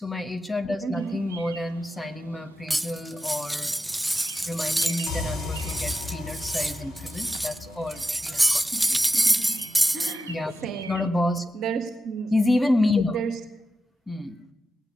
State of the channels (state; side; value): normal; both; correlation 0.90